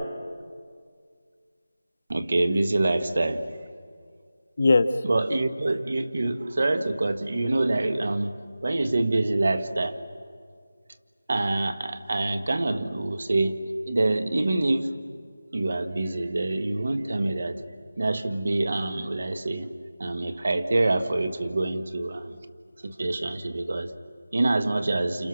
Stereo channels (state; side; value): inverted; both; correlation -0.96